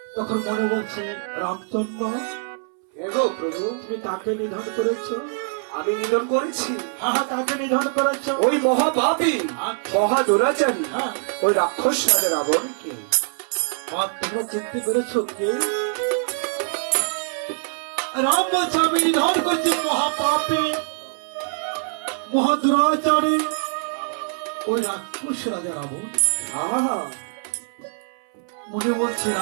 তখন মনে বলছে, রামচন্দ্র এগো প্রভু, তুমি কাকে নিধন করেছ? আমি নিধন করেছি? হ্যাঁ, কাকে নিধন করেছ? ওই মহাপাপী, মহা দুরাচারী, হ্যাঁ, ওই রাক্ষস রাজা রাবণকে। আর তোমরা চিনতে পেরেছ কে? রাম বলছে, আমি নিধন করছি মহাপাপী, মহা দুরাচারী, ওই রাক্ষস রাজা রাবণ। আহা, মনে বলছে,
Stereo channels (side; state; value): left; silent; 63 dB below the other